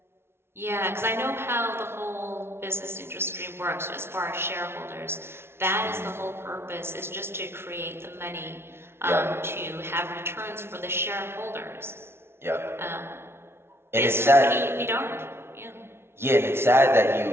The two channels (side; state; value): left; late; 0.12 ms